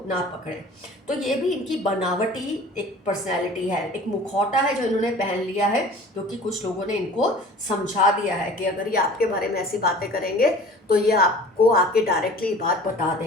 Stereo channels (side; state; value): both; normal; correlation 0.44